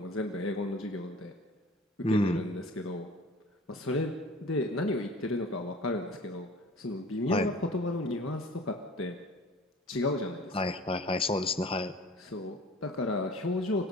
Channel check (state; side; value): normal; both; correlation 0.45